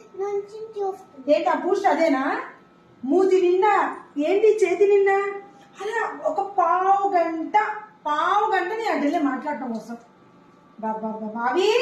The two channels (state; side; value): identical; both; correlation 1.00